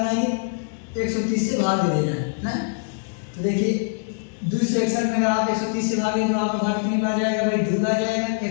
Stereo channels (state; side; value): silent; right; digital silence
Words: है 130 से भाग दे देना है ना। तो देखिए 261 में अगर आप 130 से भागें तो आपका भाग कितनी बार जाएगा भाई 2 बार जाएगा।